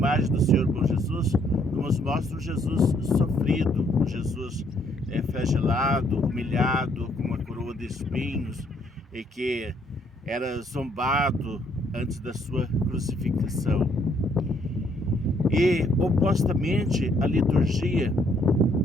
do Senhor Bom Jesus, nos mostra um Jesus sofrido, um Jesus flagelado, humilhado, com uma coroa de espinhos, e que era zombado antes da sua crucificação. E, opostamente, a liturgia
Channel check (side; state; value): both; normal; correlation 0.68